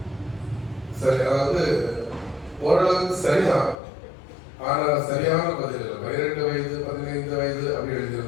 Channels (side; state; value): right; drops out; at 3.8 s